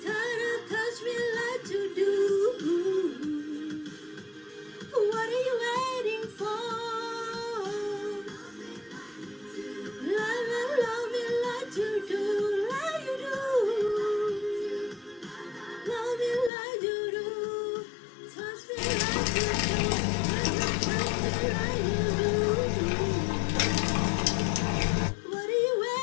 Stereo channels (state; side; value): drops out; right; at 16.5 s